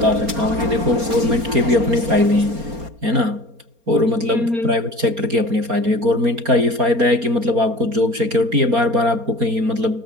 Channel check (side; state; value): left; late; 4.3 ms